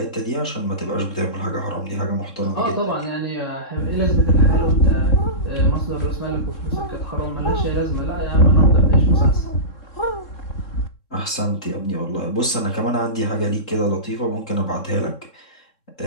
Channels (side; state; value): right; late; 3.7 ms